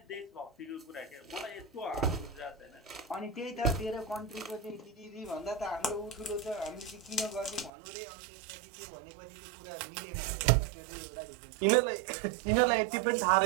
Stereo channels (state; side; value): drops out; left; at 7.7 s